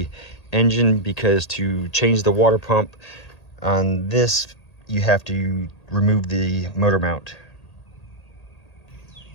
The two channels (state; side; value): late; right; 1.8 ms